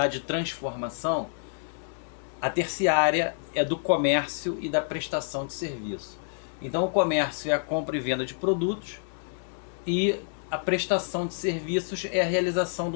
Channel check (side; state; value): right; silent; digital silence